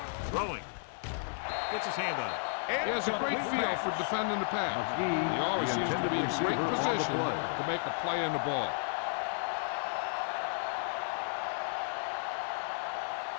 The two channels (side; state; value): right; silent; 56 dB below the other